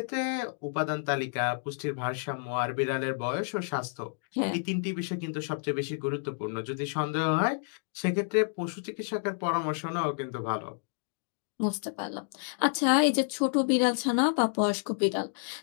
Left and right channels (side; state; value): right; silent; digital silence